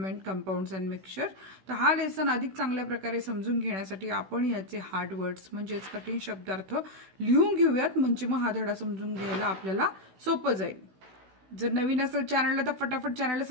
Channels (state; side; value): late; left; 16 ms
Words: कंपाऊंड्स अँड मिक्सचर. तर हा लेसन अधिक चांगल्या प्रकारे समजून घेण्यासाठी आपण याचे हार्ड वर्ड्स म्हणजेच कठीण शब्दार्थ लिहून घेऊयात, म्हणजे मग हा धडा समजून घ्यायला आपल्याला सोपं जाईल. जर नवीन असेल चॅनलला तर फटाफट चॅनलला